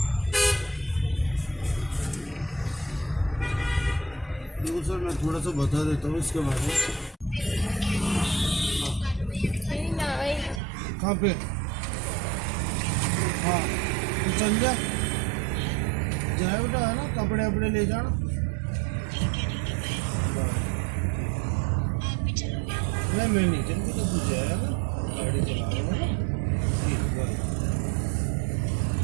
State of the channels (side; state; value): left; drops out; at 10.6 s